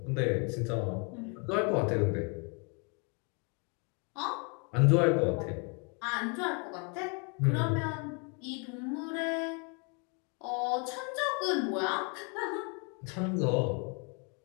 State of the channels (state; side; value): quieter; right; 35.3 dB